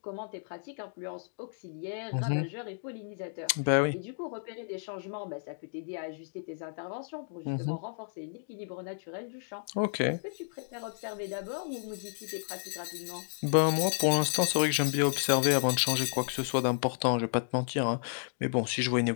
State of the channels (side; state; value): right; silent; digital silence